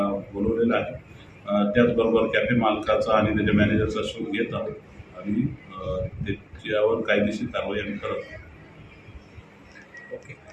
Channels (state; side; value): identical; both; correlation 1.00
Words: बोलवलेलं आहे। त्याचबरोबर कॅफे मालकाचा आणि त्याच्या मॅनेजरचा शोध घेत आहोत आणि त्याच्यावर कायदेशीर कारवाई आम्ही करत आहोत।